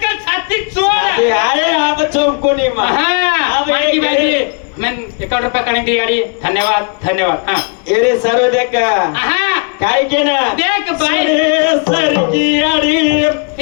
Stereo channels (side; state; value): right; quieter; 37.6 dB